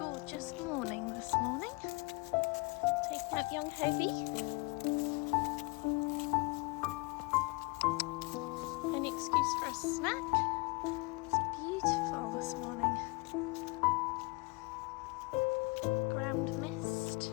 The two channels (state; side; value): quieter; right; 27.2 dB